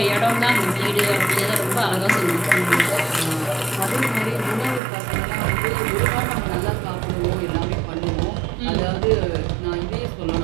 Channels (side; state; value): left; drops out; at 4.8 s